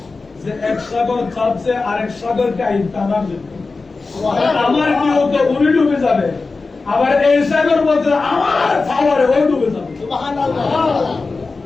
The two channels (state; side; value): quieter; right; 3.9 dB